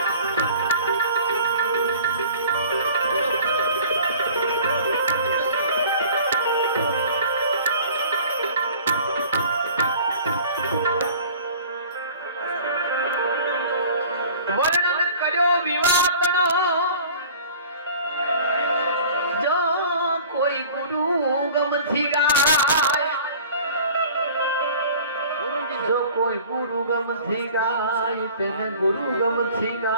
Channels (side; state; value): both; inverted; correlation -0.46